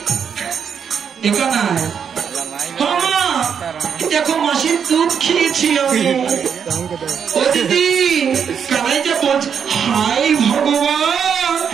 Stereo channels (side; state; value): left; quieter; 7.3 dB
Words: এখানে হ্যাঁ মা, দেখো মাসির দুধ খেয়েছি আমি। ও দিদি কানাই যে বলছে, হাই ভগবান,